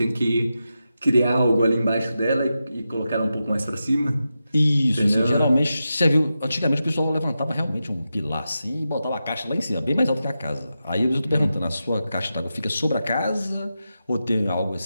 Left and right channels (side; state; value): both; inverted; correlation -0.90